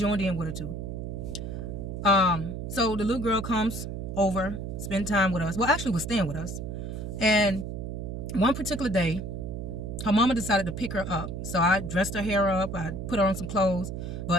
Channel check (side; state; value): right; noise; hum, 6 dB below the sound